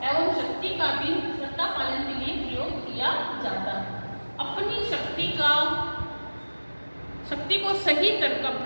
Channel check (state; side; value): inverted; both; correlation -1.00